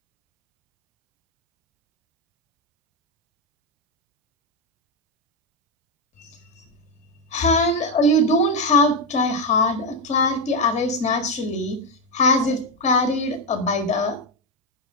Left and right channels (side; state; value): both; normal; correlation 0.06